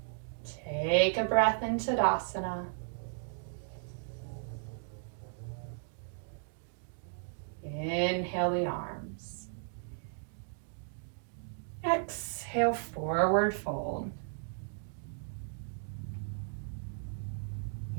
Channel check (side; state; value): left; silent; digital silence